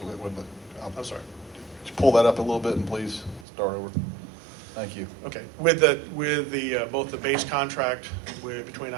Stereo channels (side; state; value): left; drops out; at 3.5 s